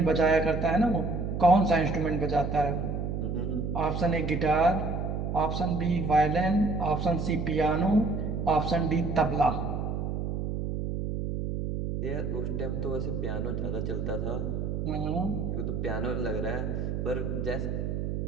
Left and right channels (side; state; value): right; noise; hum, 2 dB below the sound